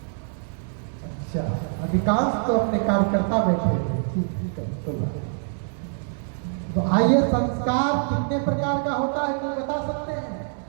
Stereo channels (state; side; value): silent; left; digital silence